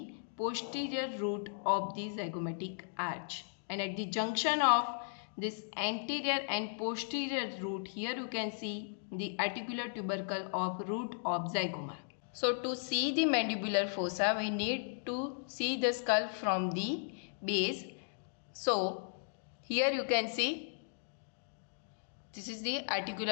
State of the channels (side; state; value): right; silent; digital silence